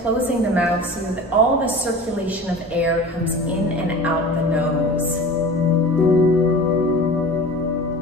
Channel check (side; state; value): both; normal; correlation 0.37